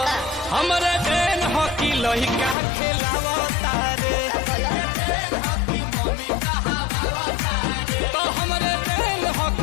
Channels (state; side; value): drops out; right; at 2.6 s